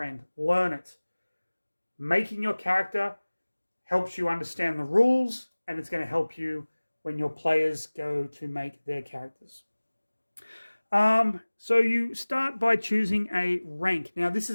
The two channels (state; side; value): inverted; both; correlation -1.00